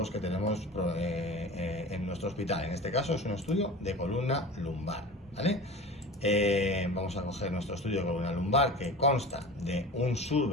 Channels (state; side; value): normal; both; correlation 0.35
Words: que tenemos en nuestro hospital. En este caso es un estudio de columna lumbar, ¿vale? Vamos a coger nuestro estudio de columna lumbar, que consta de un